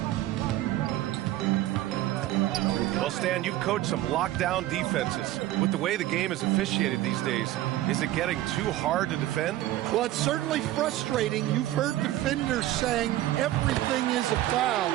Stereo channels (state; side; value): quieter; left; 14.8 dB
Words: Well, Stan, you've coached some lockdown defenses. With the way the game is officiated these days, is it getting too hard to defend? Well, it's certainly frustrating. You've heard defenders saying everything is a foul.